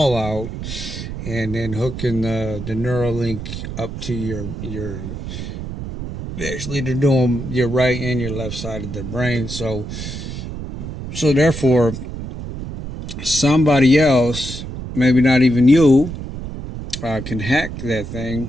out and then hooking the Neuralink up to your actually they're doing your right and your left side of the brain. So therefore, somebody else, maybe not even you, can hack that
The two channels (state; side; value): noise; right; rumble, 8 dB below the sound